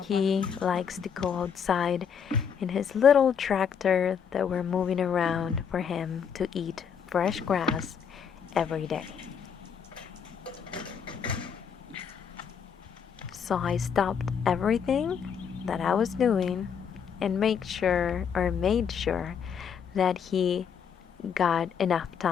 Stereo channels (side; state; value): right; quieter; 7.3 dB